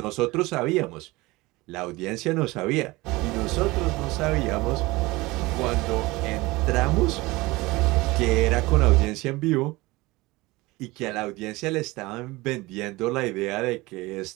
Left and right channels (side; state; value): left; quieter; 21.5 dB